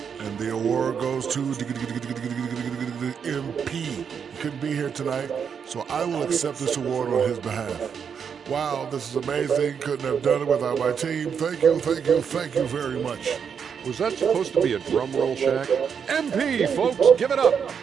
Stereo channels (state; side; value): quieter; left; 7.0 dB